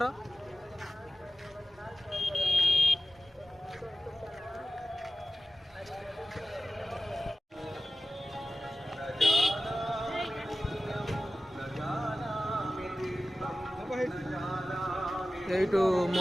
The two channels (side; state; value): both; normal; correlation 0.95